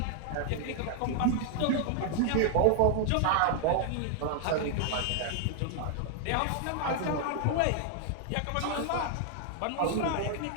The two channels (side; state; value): both; different; correlation 0.00